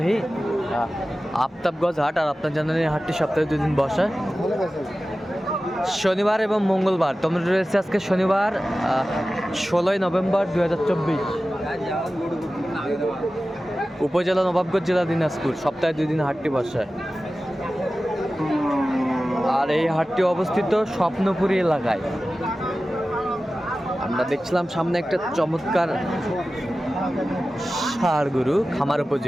আফতাবগঞ্জ হাট। আর আপনার জানেন এই হাটটি সপ্তাহে 2 দিন বসে, শনিবার এবং মঙ্গলবার। তোমরা রয়েছে আজকে শনিবার 16ই নভেম্বর 2024, উপজেলা নবাবগঞ্জ, জেলা দিনাজপুর। সপ্তাহে 2 দিন হাটটি বসে। আর এই হাটটি অবস্থিত স্বপ্নপুরী এলাকায়। আমরা দেখছিলাম সামনে একটা চমৎকার ষাঁড় গরু, খামার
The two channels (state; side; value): normal; both; correlation 0.95